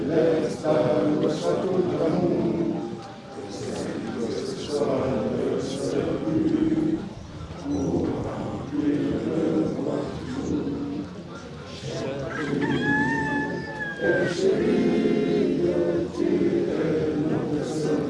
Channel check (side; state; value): both; identical; correlation 1.00